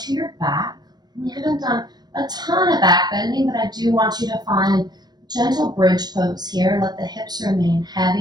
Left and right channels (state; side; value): late; left; 0.20 ms